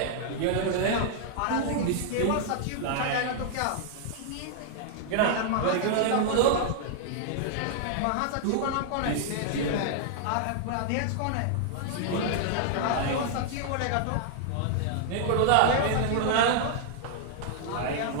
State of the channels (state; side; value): different; both; correlation -0.01